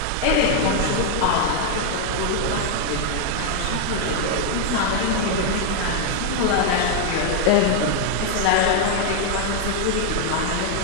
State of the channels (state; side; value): different; both; correlation 0.00